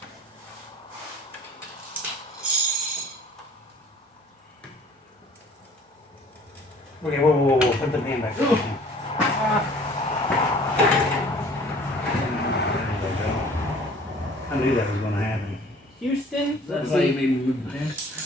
Okay, whoa. Put the pen back That's why you made me move the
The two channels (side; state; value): both; normal; correlation 0.51